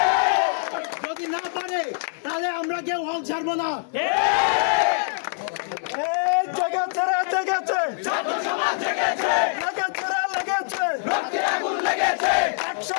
যদি না পারে তাহলে আমরা কেউ হল ছাড়বো না।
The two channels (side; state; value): right; silent; 59 dB below the other